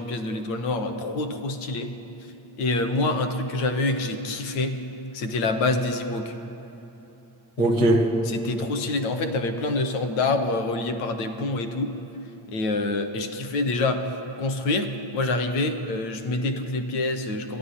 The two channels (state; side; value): late; right; 8.8 ms